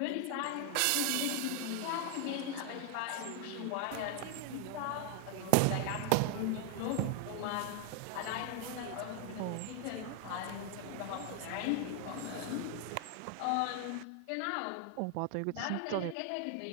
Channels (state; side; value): different; both; correlation 0.00